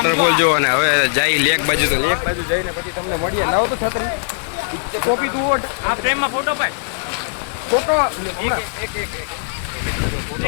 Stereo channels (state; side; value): silent; right; digital silence